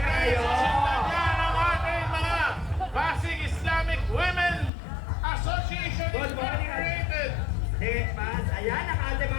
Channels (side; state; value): right; drops out; at 4.7 s